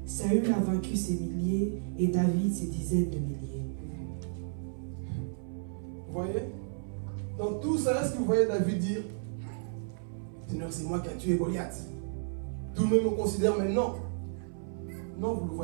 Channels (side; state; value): left; silent; 56 dB below the other